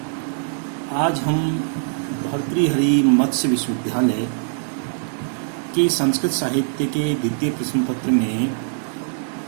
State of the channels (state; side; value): silent; left; digital silence